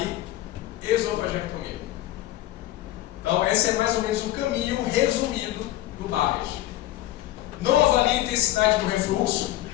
esofagectomia. Então, esse é mais ou menos o caminho resumido do Barrett. Não avalie a intensidade do refluxo,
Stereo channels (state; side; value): quieter; right; 14.9 dB